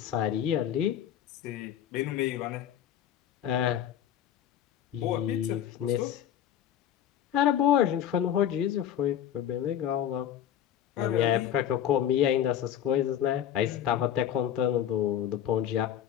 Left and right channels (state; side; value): quieter; right; 10.2 dB